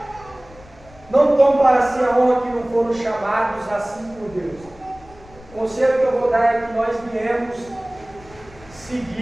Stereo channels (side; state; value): left; noise; rumble, 23 dB below the sound